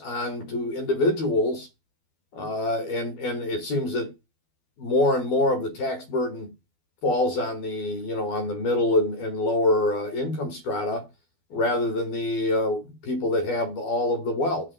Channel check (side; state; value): right; late; 12 ms